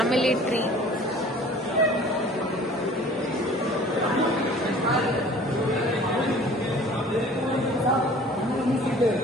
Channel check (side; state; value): both; normal; correlation 0.48